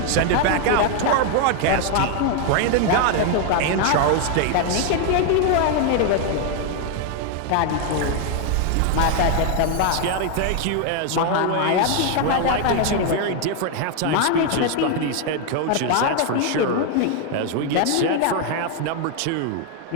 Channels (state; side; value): different; both; correlation 0.01